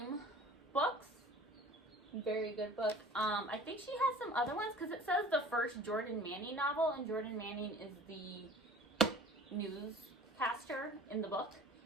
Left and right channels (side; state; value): both; normal; correlation 0.46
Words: books, very good book. I think she has some other ones because it says the first Jordan Manning novel, and Jordan Manning is the newscaster in the book.